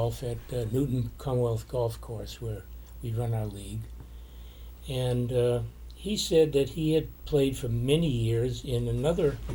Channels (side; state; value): both; identical; correlation 1.00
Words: at Newton Commonwealth Golf Course where we run our league, and he said that he had played for many years in another